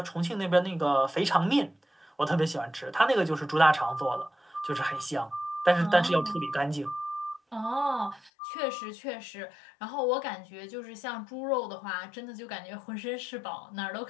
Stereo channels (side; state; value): right; drops out; at 8.3 s